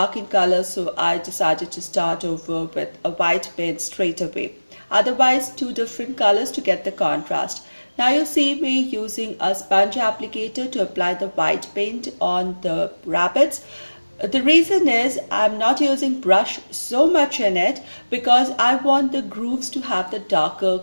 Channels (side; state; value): both; inverted; correlation -1.00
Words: in color, so I decided to start over with a white paint straight away. Otherwise, two different colors to get the contrast. Now you see me using a sponge applicator to apply the white paint on the rabbits. The reason is I'm not using brush so much in it because I want the grooves to have the darker